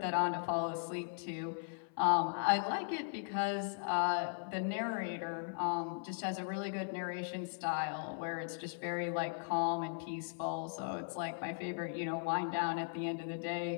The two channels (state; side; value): silent; right; 52 dB below the other